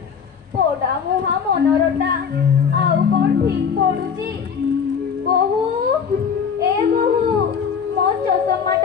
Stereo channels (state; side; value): quieter; right; 6.8 dB